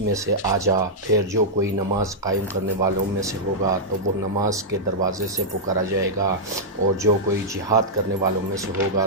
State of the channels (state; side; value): normal; both; correlation -0.08